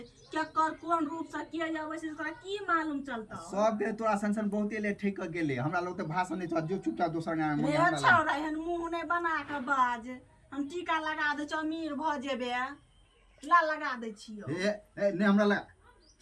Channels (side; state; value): both; identical; correlation 1.00